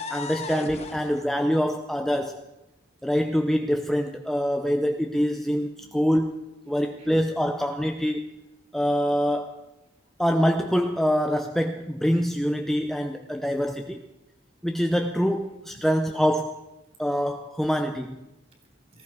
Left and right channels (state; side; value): normal; both; correlation 0.93